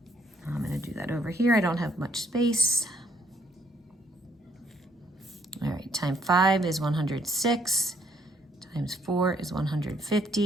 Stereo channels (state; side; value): normal; both; correlation 0.68